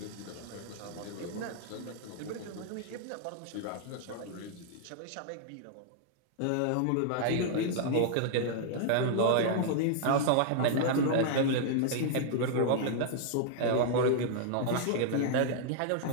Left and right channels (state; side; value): different; both; correlation 0.00